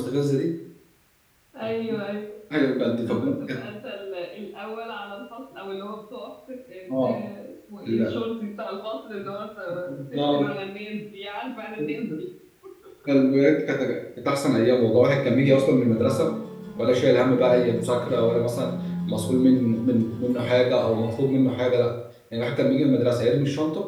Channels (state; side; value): identical; both; correlation 1.00